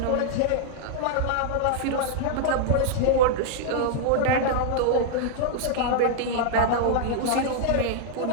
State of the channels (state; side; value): different; both; correlation -0.01